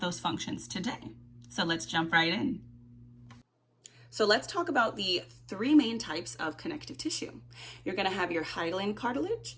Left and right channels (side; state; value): both; identical; correlation 1.00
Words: those functions today. So let's jump right in. So let's talk about the three main types of connective tissue. You're going to have your hyaline cartilage,